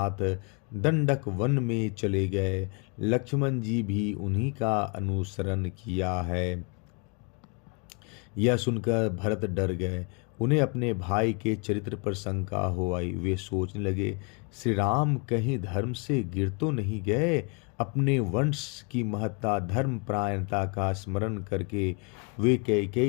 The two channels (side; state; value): right; quieter; 34.3 dB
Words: दंडक वन में चले गए। लक्ष्मण जी भी उन्हीं का अनुसरण किया है। यह सुनकर भरत डर गए। उन्हें अपने भाई के चरित्र पर शंका हो आई। वे सोचने लगे, श्री राम कहीं धर्म से गिर तो नहीं गए? अपने वंश की महत्ता धर्म परायणता का स्मरण करके वे